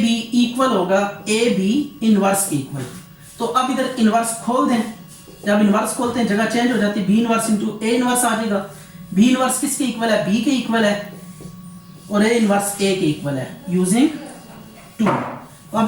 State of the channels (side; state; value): both; identical; correlation 1.00